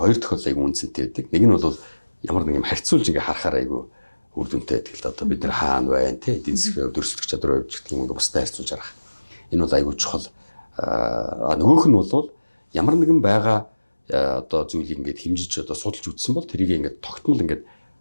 тохиолдол айгүй үнцэнтэй байдаг. Нэг нь бол ямар нэг юм харьцуулж ингээ харахаар айгүй үр дүнтэй байдаг л да. Одоо бид нар хаана байна тий эдийн засгийн өрсөлдөх чадвар хувьд гэх юм ингээ бусдад харьцуулж харах. Энэ бол айгүй чухал. Нөгөөх нь бол ямар нэгэн байгаа одоо зүйлийг ингээд хэмжиж одоо судалж үзсэн бол тэрийг ингээд тогтмол ингээд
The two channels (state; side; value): inverted; both; correlation -1.00